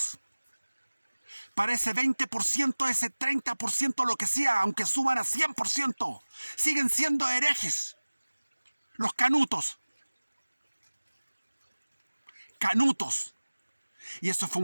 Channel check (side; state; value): both; inverted; correlation -1.00